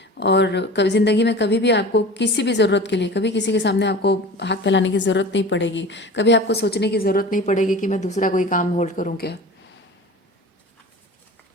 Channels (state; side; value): normal; both; correlation 0.37